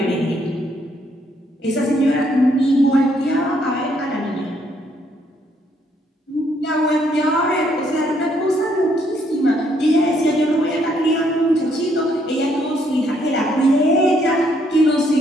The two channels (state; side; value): normal; both; correlation 0.70